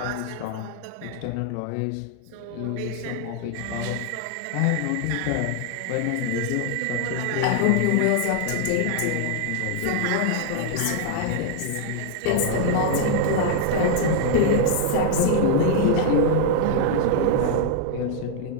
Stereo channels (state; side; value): different; both; correlation 0.00